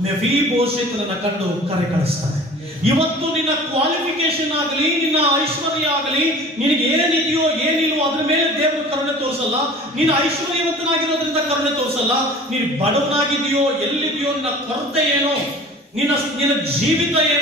ಮೆಫೀಬೋಶೆತನನ್ನ ಕಂಡು ಕರೆ ಕಳಿಸ್ತಾನೆ. ಇವತ್ತು ನಿನ್ನ ಕ್ವಾಲಿಫಿಕೇಶನ್ ಆಗಲಿ, ನಿನ್ನ ಐಶ್ವರ್ಯ ಆಗಲಿ, ನಿನಗೆ ಏನಿದೆಯೋ ಏನಿಲ್ವೋ ಅದ್ರ ಮೇಲೆ ದೇವರು ಕರುಣೆ ತೋರಿಸಲ್ಲ. ನೀನು ಐಶ್ವರ್ಯವಂತನಾಗಿರೋದ್ರಿಂದ ಕರುಣೆ ತೋರಿಸಲ್ಲ. ನೀನು ಬಡವನಾಗಿದೆಯೋ, ಎಲ್ಲಿದೆಯೋ, ನಿನ್ನ ಕೊರತೆ ಏನೋ, ನಿನ್ನ ಜೀವಿತ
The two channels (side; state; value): both; normal; correlation 0.43